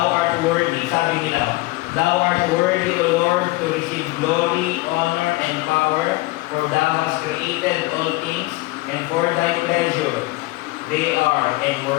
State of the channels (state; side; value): quieter; right; 21.2 dB